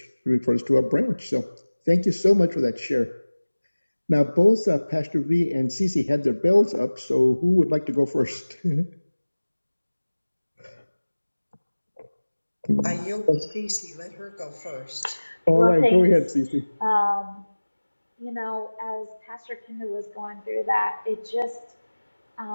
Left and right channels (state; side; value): inverted; both; correlation -1.00